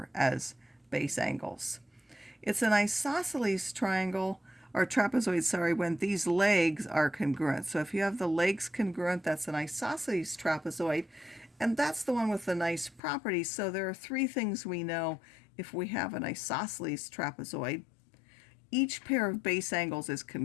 as base angles. It's an isosceles triangle, or trapezoid, sorry, when these legs are congruent. So if you have the legs congruent, that's an isosceles trapezoid, and that's the one with the nice properties. So there are three things we know if we have an isosceles trapezoid. Each pair of base angles is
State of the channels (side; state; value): right; drops out; at 13.0 s